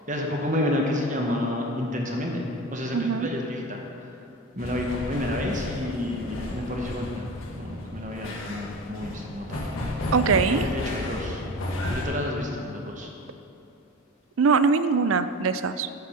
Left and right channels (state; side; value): normal; both; correlation 0.31